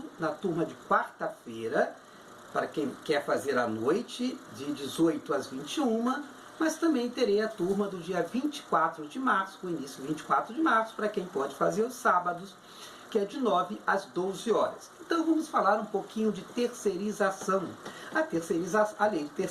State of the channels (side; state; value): both; identical; correlation 1.00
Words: na turma de quarta-feira, para quem quer fazer à noite, de 18 às 21, mas também terei a turma do dia 24 de março, com início 24 de março, para quem pode fazer os sábados, que é de 9 às 12 horas. Então vamos falar um pouquinho de terceirização. A lei de